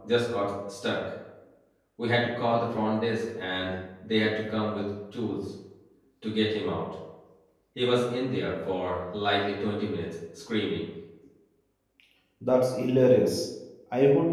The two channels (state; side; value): identical; both; correlation 1.00